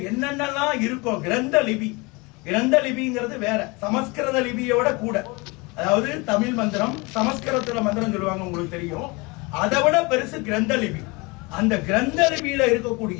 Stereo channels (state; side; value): quieter; right; 26.5 dB